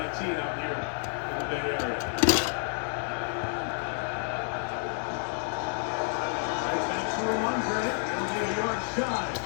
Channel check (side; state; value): right; silent; 55 dB below the other